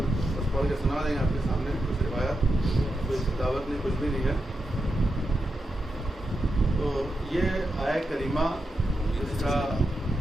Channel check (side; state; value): both; normal; correlation 0.87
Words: بس پڑھ کے سنا دیں گے آپ کے سامنے. کچھ روایات، کوئی دعوت نہیں، کچھ بھی نہیں ہے. تو یہ آیہ کریمہ